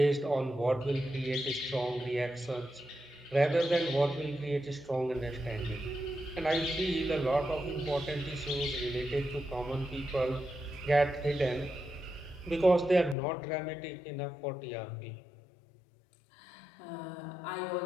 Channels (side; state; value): right; drops out; at 13.2 s